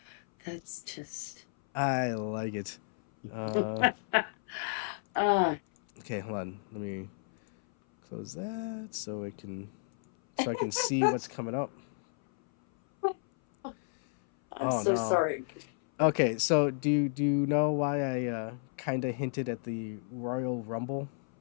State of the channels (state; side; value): silent; right; 56 dB below the other